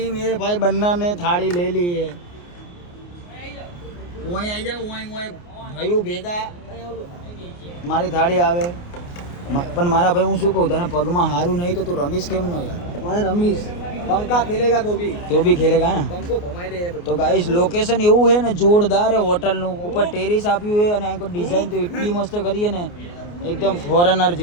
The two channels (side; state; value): right; late; 29 ms